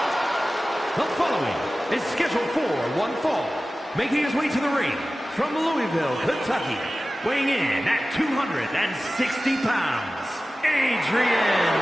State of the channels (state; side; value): normal; both; correlation 0.96